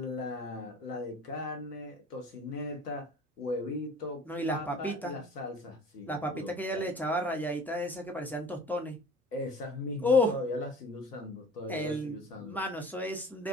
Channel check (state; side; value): normal; both; correlation 0.45